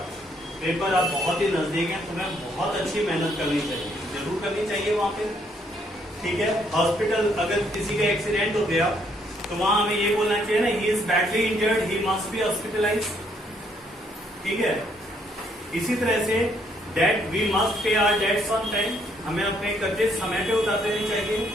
paper आप बहुत ही नजदीक हैं, तुम्हें बहुत अच्छी मेहनत करनी चाहिए, जरूर करनी चाहिए वहां पे, ठीक है। हॉस्पिटल, अगर किसी का एक्सीडेंट हो गया तो वहां हमें ये बोलना चाहिए ना, he is badly injured, he must be hospitalise, ठीक है। इसी तरह से debt, we must pay our debts on time, हमें अपने कर्जे समय पे उतार देने चाहिए।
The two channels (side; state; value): both; normal; correlation 0.69